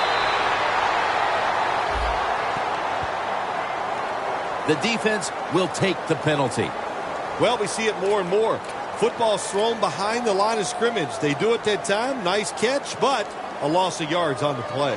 The defense will take the penalty. Well, we see it more and more. Football's thrown behind the line of scrimmage. They do it that time. Nice catch, but a loss of yards on the play.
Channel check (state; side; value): identical; both; correlation 1.00